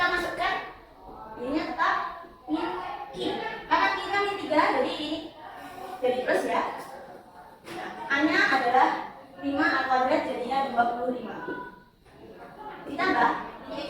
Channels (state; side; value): identical; both; correlation 1.00